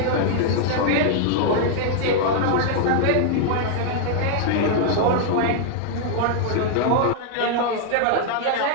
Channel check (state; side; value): different; both; correlation 0.00